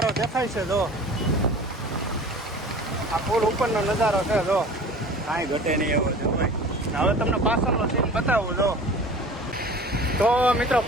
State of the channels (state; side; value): normal; both; correlation 0.41